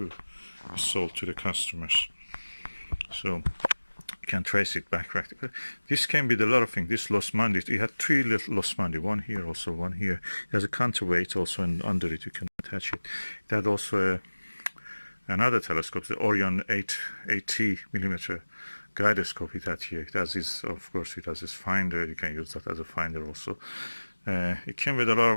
be sold to the customers. So you can trace it back practically. This came with a lot of things. This Los Mandi, it had 3 little Los Mandi, one here, also one here. It has a counterweight also, and under it you can attach it. It had also another telescope, the Orion 80 millimeter gyroscope it had here. It has this, of course, it has this finder. You can use that as a finder also. It came with a lot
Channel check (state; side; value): inverted; both; correlation -1.00